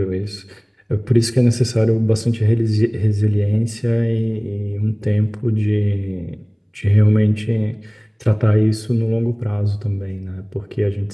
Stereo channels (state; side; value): identical; both; correlation 1.00